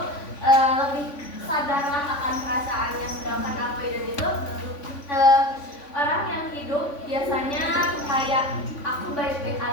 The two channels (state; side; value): late; right; 3.5 ms